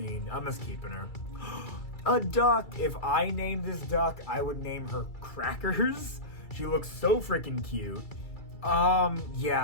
I'm just keeping her. A duck. If I named this duck, I would name her Crackers. She looks so freaking cute.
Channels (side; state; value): right; late; 2.3 ms